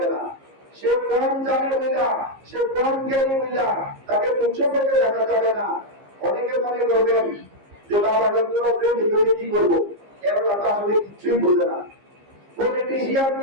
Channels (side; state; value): left; late; 15 ms